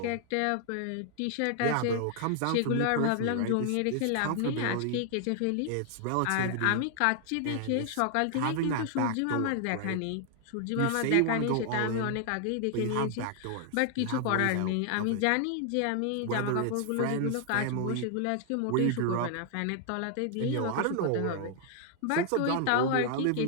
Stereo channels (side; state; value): both; different; correlation 0.00